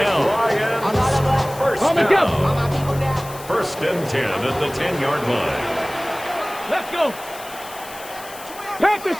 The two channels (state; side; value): noise; left; hiss, 16 dB below the sound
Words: First and 10 at the 10-yard line. Let's go. Panther